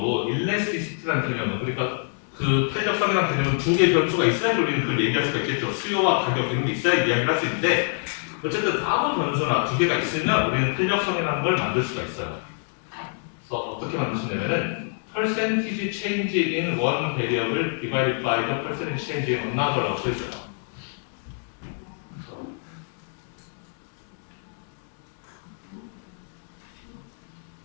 일레스티시티라는 개념은 그러니까 그 탄력성이라는 개념은 두 개의 변수가 있어야 우리는 그걸 얘기할 수가 있겠죠. 수요와 가격 이런 게 있어야 이야기를 할 수 있는데 어쨌든 아무 변수나 두 개가 있으면 우리는 탄력성이라는 걸 만들 수가 있어요. 그래서 어떻게 만들 수 있냐면은 percentage change in one variable divided by the percentage change in another라고 써 있어요.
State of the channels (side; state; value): right; silent; 56 dB below the other